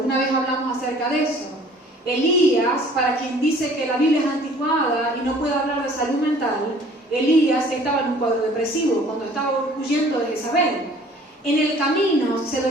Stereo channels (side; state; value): both; normal; correlation 0.52